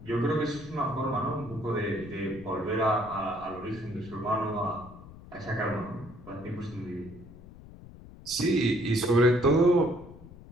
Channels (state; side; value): noise; left; rumble, 18 dB below the sound